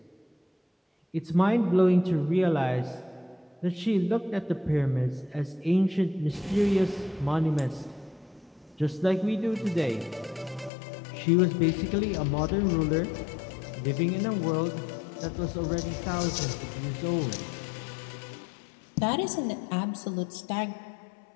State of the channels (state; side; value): drops out; right; at 10.7 s